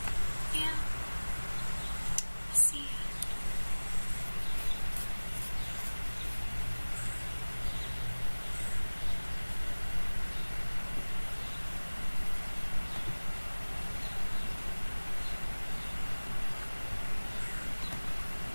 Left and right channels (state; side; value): inverted; both; correlation -1.00